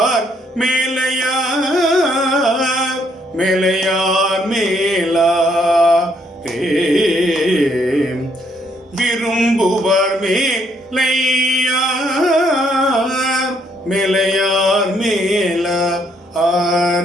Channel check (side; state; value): both; normal; correlation 0.70